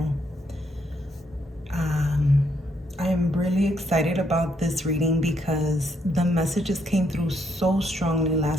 I'm really excited about this reading because the messages came through so strongly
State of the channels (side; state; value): both; normal; correlation 0.74